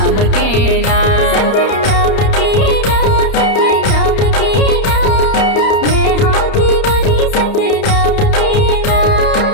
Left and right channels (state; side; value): late; right; 31 ms